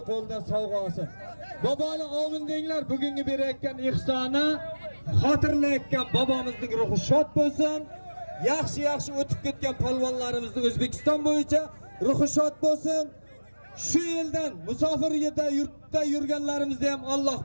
qo'lidan sovg'a olsin. Boboni omin denglar, bugungi berayotgan ihsoni xotirlayotgan bobomizning ruhi shod bo'lsin. Yaxshi o'tib ketgan palvonlarimizni O'zbekiston bo'yicha ruhi shod bo'lsin. Shu yildan musofir yurtda yurganlarimizni ham Alloh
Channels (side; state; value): both; inverted; correlation -1.00